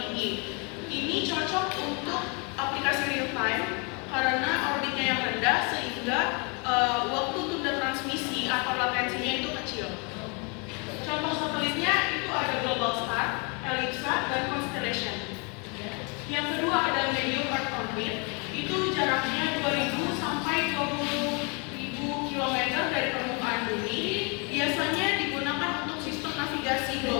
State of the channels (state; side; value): quieter; right; 32.9 dB